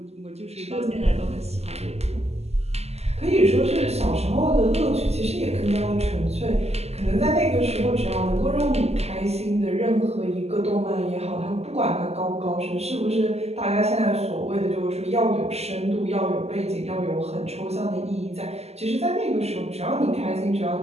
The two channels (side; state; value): left; late; 0.30 ms